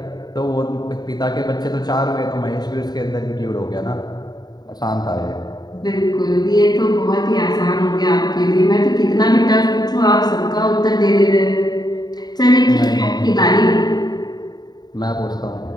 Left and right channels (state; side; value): late; right; 0.20 ms